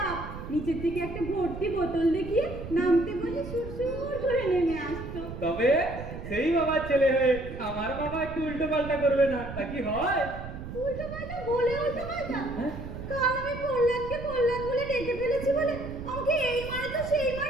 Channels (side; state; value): right; noise; rumble, 10 dB below the sound